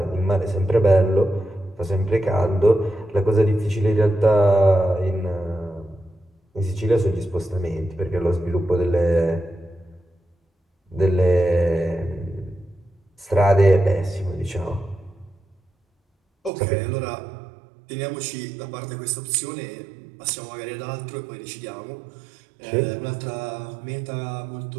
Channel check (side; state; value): left; drops out; at 16.5 s